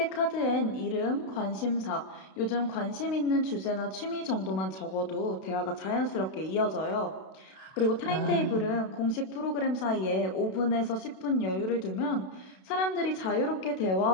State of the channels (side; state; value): right; late; 32 ms